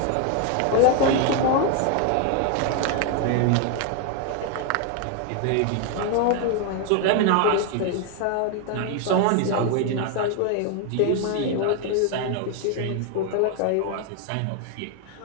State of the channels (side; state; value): both; different; correlation 0.01